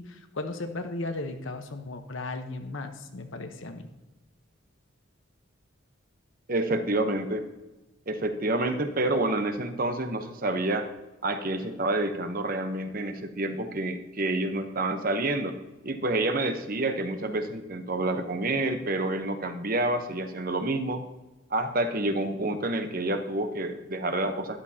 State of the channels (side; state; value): both; normal; correlation 0.21